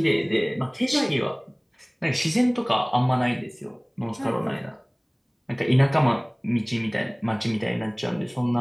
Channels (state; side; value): identical; both; correlation 1.00